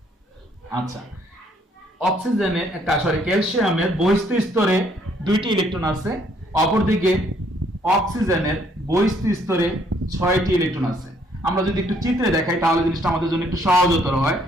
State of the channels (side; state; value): both; normal; correlation 0.67